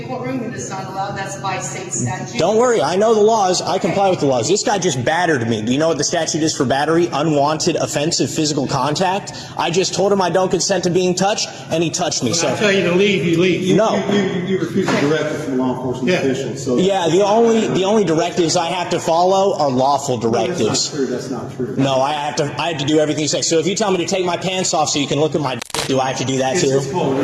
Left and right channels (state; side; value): identical; both; correlation 1.00